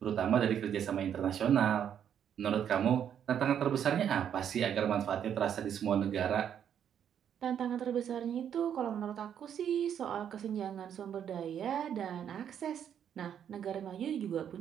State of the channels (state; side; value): quieter; left; 9.0 dB